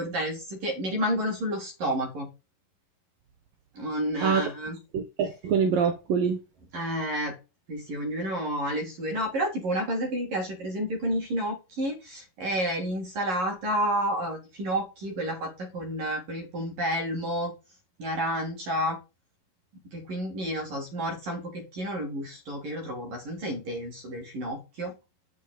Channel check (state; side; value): late; left; 11 ms